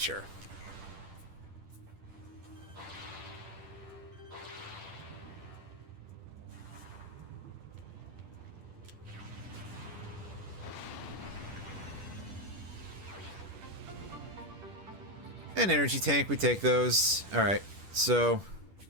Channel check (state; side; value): late; left; 10 ms